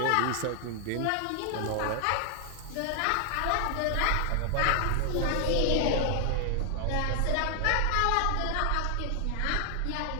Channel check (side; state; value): both; different; correlation 0.00